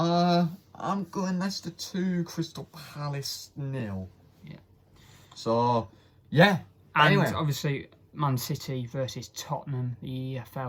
I'm going Leicester 2, Crystal Palace 0. Yeah. So, yeah. And anyway. Obviously, Man City versus Tottenham, the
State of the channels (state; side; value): identical; both; correlation 1.00